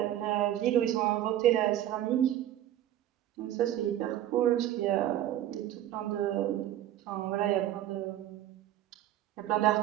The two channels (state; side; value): quieter; left; 12.5 dB